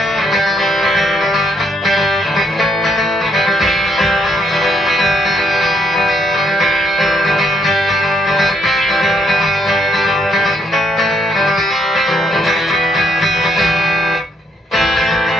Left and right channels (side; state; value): both; normal; correlation 0.72